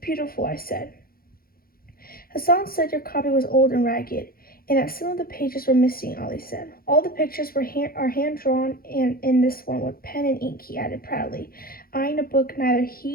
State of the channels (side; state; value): right; late; 0.43 ms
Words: I said. "Hassan said your copy was old and ragged, and that some of the pages were missing," Ollie said. "All the pictures are hand-drawn, and in this one with pen and ink," he added proudly, eyeing a book neither